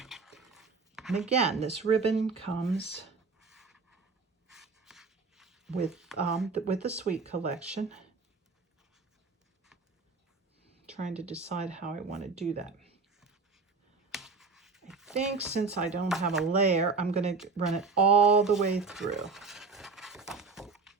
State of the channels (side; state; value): left; quieter; 4.5 dB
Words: And again, this ribbon comes with the Sweet collection. Trying to decide how I want to do that. I think since I don't have a layer, I'm going to run it all the way through.